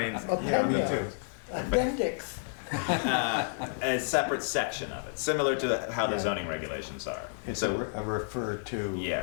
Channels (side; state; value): right; silent; 57 dB below the other